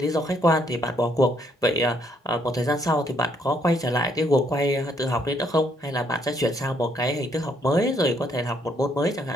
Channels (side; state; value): both; normal; correlation 0.70